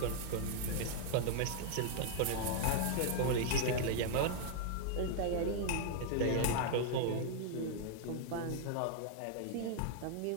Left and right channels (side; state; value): both; different; correlation -0.01